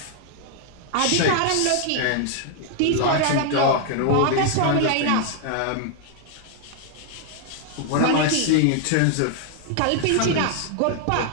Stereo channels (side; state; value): both; different; correlation 0.00